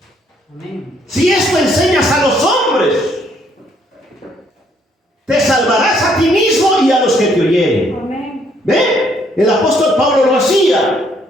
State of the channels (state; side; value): normal; both; correlation 0.68